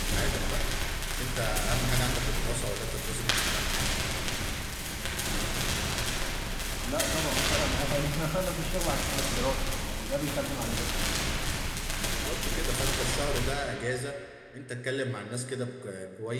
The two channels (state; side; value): identical; both; correlation 1.00